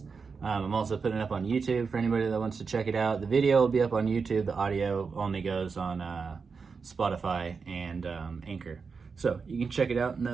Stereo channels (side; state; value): left; quieter; 5.2 dB